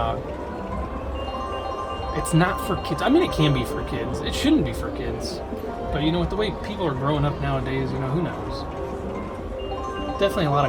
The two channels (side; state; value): both; identical; correlation 1.00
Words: it's not for kids. I mean, it can be for kids. It shouldn't be for kids. But, you know, with the way people are growing up nowadays, you know, who knows? Definitely a lot